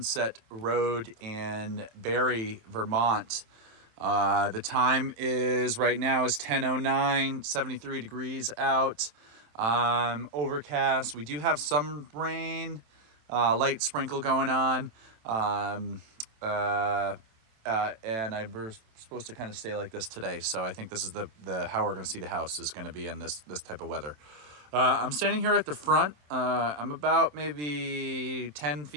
Road in Barrie, Vermont. The time is right now is 10:09, 73 degrees out, overcast. We do have some rain, light sprinkle going on, and we're supposed to kind of stay like this today. So I think this is the how we're going to see the house is going to be in this type of weather. I'm standing here at the front. I'm about maybe 10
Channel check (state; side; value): late; left; 27 ms